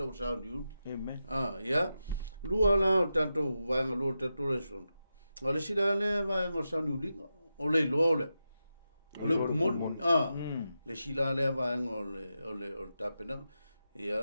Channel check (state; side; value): inverted; both; correlation -0.90